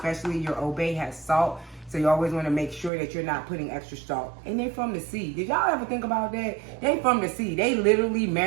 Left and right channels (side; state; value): left; drops out; at 2.9 s